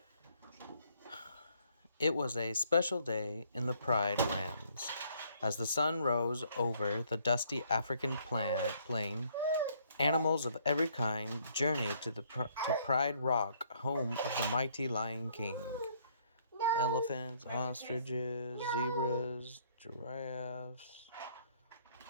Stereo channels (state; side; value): inverted; both; correlation -0.65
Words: It was a special day in the Pride Lands. As the sun rose over the dusty African plain, animals of every kind journeyed to Pride Rock, home of the mighty Lion King. Elephants, ostriches, zebras, giraffes,